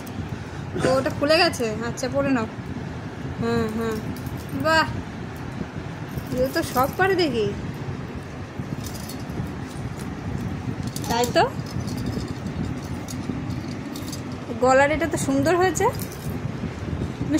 তো ওটা খুলে গেছে? আচ্ছা পরে নাও। হ্যাঁ হ্যাঁ বাহ, রিও তো সব পারে দেখি। তাই তো, গলার এটা তো সুন্দর হয়েছে। তুমি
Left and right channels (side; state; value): both; identical; correlation 1.00